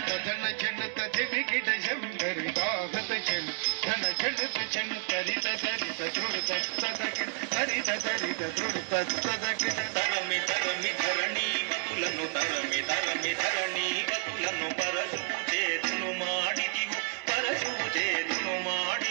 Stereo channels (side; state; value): left; silent; 57 dB below the other